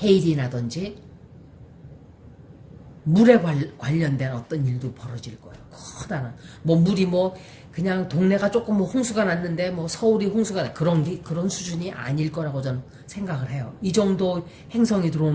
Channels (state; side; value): identical; both; correlation 1.00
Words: 해일이 나든지 물에 관련된 어떤 일도 벌어질 거예요. 커다란 뭐 물이 뭐 그냥 동네가 조금 뭐 홍수가 났는데 뭐 서울이 홍수가 그런 수준이 아닐 거라고 저는 생각을 해요. 이 정도 행성이